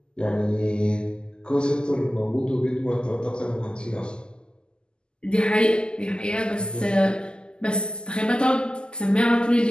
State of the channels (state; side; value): late; right; 0.047 ms